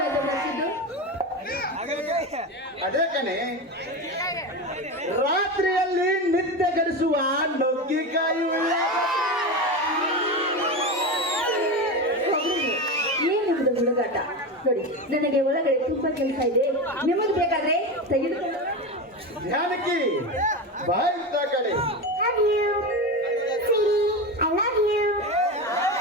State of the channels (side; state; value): both; normal; correlation 0.20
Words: ಮತ್ತಿದ್ದು? ಅದೇ ಕಣೆ, ರಾತ್ರಿಯಲ್ಲಿ ನಿದ್ದೆ ಗಡಿಸುವ ನುಗ್ಗಿಕಾಯಿ ಏನಿದೆ ಹುಡುಗಾಟ? ನೋಡಿ, ನನಗೆ ಒಳಗಡೆ ತುಂಬಾ ಕೆಲಸ ಇದೆ. ನಿಮಗೆ ಬೇಕಾದ್ರೆ ತೆಗೆದುಕೊಂಡು. ಜಾನಕಿ, ಬಾಯ್ತಾ ಕಡೆ.